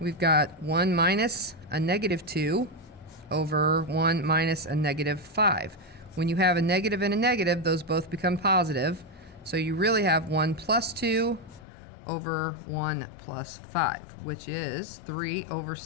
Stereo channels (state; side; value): drops out; right; at 11.7 s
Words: got 1 minus a -2 over 1 minus a -5. When you have a negative and a negative, those both become positive, so you really have 1 plus 2 over 1 plus 5, which is 3 over